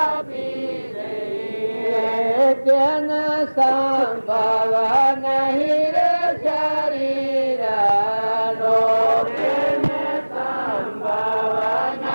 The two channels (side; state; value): both; inverted; correlation -1.00